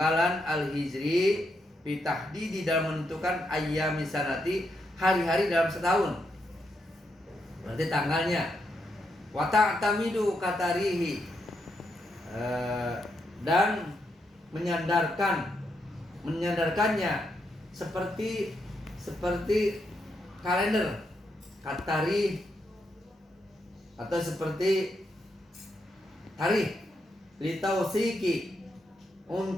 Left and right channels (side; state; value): both; normal; correlation 0.81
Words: al-hijri fi tahdidi dalam menentukan ayyami sanati hari-hari dalam setahun. Berarti tanggalnya. Wa ta'tamidu katarihi dan menyandarkannya seperti kalender katari atau seperti tarikh litausiki